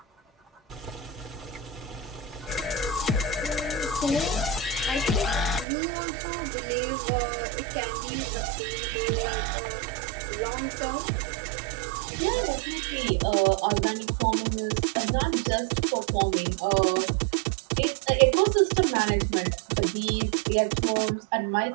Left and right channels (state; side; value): drops out; left; at 5.7 s